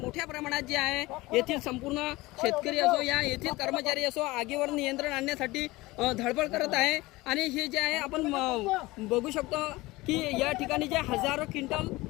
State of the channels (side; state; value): right; quieter; 20.5 dB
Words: प्रमाणात जे आहे येथील संपूर्ण शेतकरी असो या येथील कर्मचारी असो आगीवर नियंत्रण आणण्यासाठी धडपड करत आहे। आणि हे जे आहे आपण बघू शकतो की या ठिकाणी जे हजारो क्विंटल